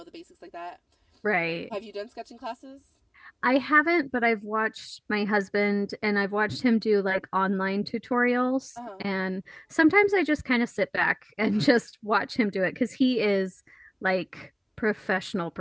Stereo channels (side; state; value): both; identical; correlation 1.00